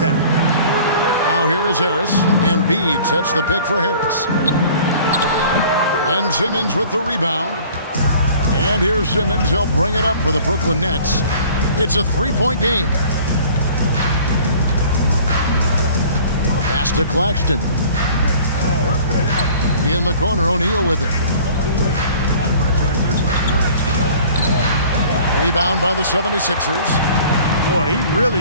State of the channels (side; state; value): both; inverted; correlation -0.49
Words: Now here is Harris. Embiid sets the pick for Harris. And Simmons with the rebound. And here's Simmons. He'll bring it up for the Brooklyn Nets. It's a three-point game. Pass to Claxton. In the corner, O'Neal with it. Rebound by the 76ers. Boy, he